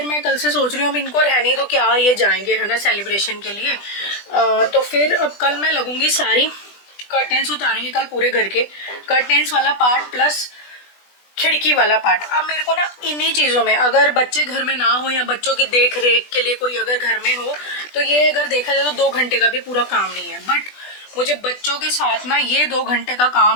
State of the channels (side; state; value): right; late; 20 ms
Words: मैं कल से सोच रही हूँ अब इनको रहनी तो क्या ये जाएंगे, है ना, सेलिब्रेशन के लिए। तो फिर अब कल मैं लगूंगी सारी कर्टेंस उतारेंगे कल पूरे घर के, कर्टेंस वाला पार्ट प्लस खिड़की वाला पार्ट। अब मेरे को ना इन्हीं चीज़ों में, अगर बच्चे घर में ना हो या बच्चों की देख रेख के लिए कोई अगर घर में हो तो ये अगर देखा जाए तो 2 घंटे का भी पूरा काम नहीं है, बट मुझे बच्चों के साथ ना ये 2 घंटे का